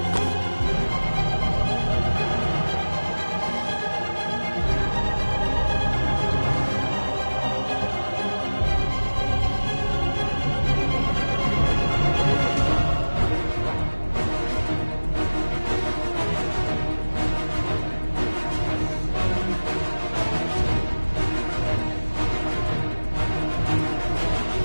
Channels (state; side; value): inverted; both; correlation -1.00